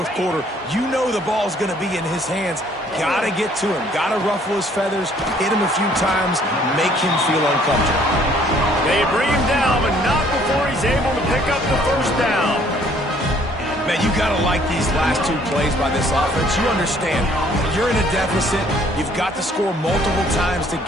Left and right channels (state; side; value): normal; both; correlation 0.61